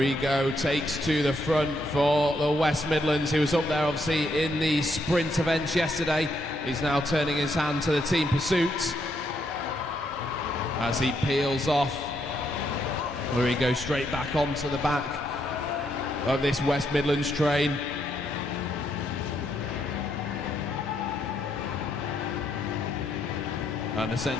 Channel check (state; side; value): normal; both; correlation 0.76